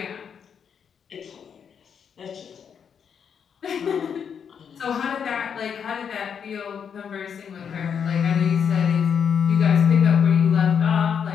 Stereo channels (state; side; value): quieter; right; 7.3 dB